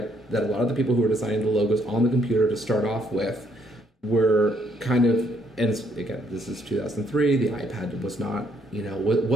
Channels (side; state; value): both; normal; correlation 0.70